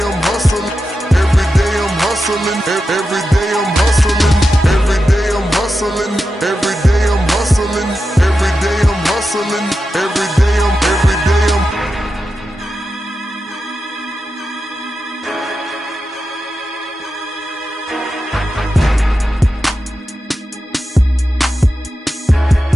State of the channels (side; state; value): both; normal; correlation 0.90